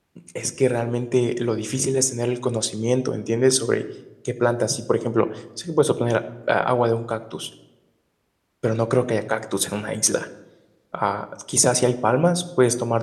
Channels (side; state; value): both; identical; correlation 1.00